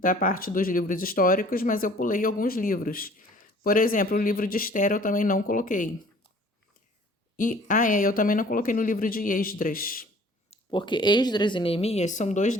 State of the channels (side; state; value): both; normal; correlation 0.52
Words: parte dos livros históricos, mas eu pulei alguns livros. Por exemplo, o livro de Esther eu também não coloquei. Eu também não coloquei no livro de Esdras, porque Esdras e Neemias são 2